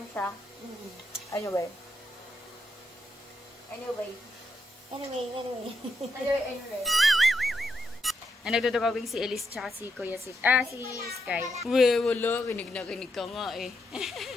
siya. Anyway. Anyway. Nagdodrawing si Elise tsaka si Kuya si Sky. Wala. Kinig na kinig ka nga eh.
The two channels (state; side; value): normal; both; correlation 0.82